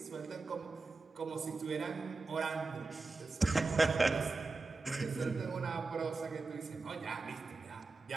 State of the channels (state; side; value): quieter; left; 3.8 dB